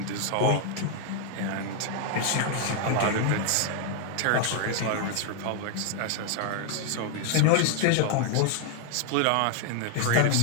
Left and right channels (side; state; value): both; different; correlation 0.00